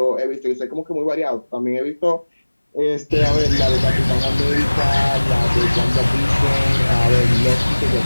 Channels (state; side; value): inverted; both; correlation -1.00